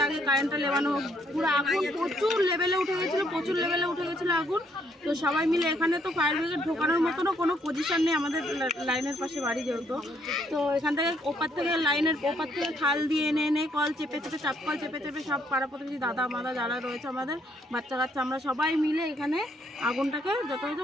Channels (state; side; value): normal; both; correlation 0.70